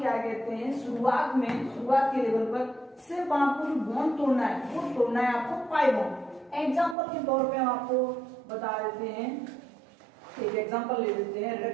कहते हैं, शुरुआत के लेवल पर सिर्फ आपको जो बॉन्ड तोड़ना है वो तोड़ना है आपको पाई बॉन्ड। एग्जाम्पल के तौर पे हम आपको बता देते हैं, एक एग्जाम्पल ले लेते हैं।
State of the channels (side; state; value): left; drops out; at 7.0 s